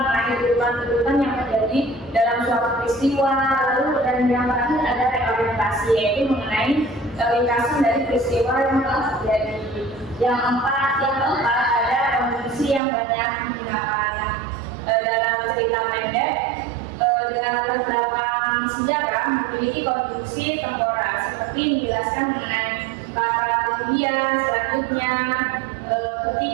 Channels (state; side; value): drops out; left; at 12.8 s